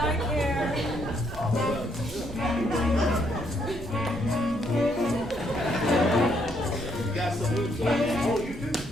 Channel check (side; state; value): both; normal; correlation 0.72